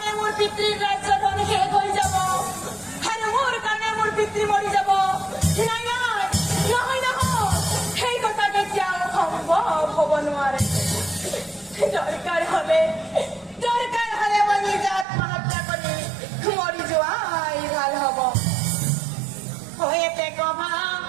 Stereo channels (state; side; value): drops out; left; at 15.1 s